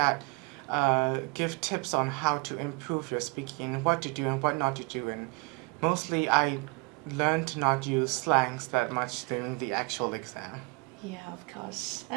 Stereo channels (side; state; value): left; quieter; 28.2 dB